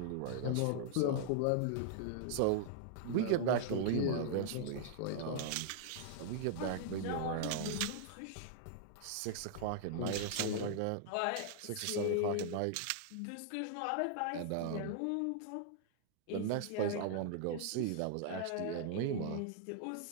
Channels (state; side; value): different; both; correlation -0.01